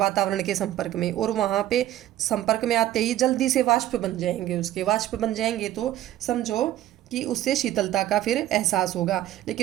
के संपर्क में, और वहाँ पे संपर्क में आते ही जल्दी से वाष्प बन जाएंगे। उसके वाष्प बन जाएंगे तो समझो कि उससे शीतलता का फिर एहसास होगा।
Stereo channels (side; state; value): left; quieter; 13.4 dB